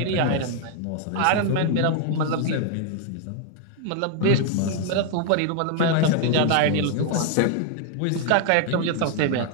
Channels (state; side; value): different; both; correlation 0.00